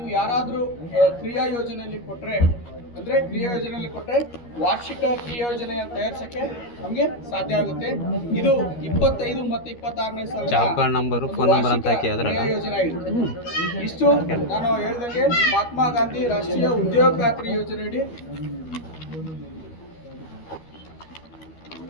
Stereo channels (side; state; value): right; late; 13 ms